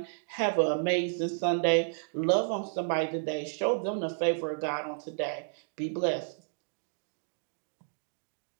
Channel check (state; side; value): silent; left; digital silence